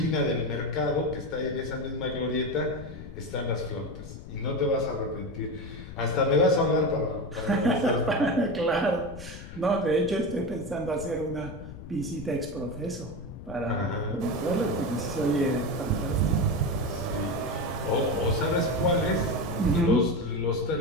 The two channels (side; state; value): left; noise; rumble, 13 dB below the sound